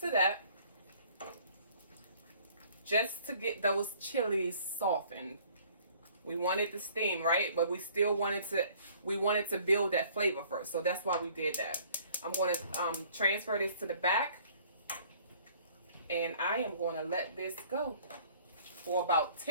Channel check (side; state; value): both; inverted; correlation -0.55